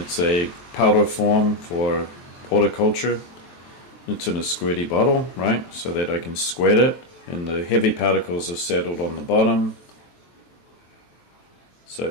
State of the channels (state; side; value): late; right; 23 ms